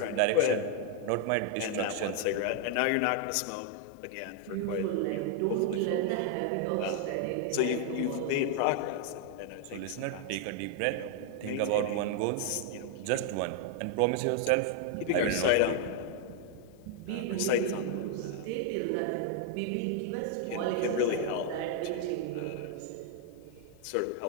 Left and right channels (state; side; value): different; both; correlation 0.00